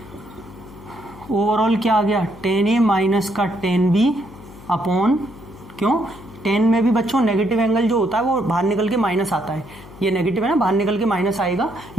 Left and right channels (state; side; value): noise; left; hum, 19 dB below the sound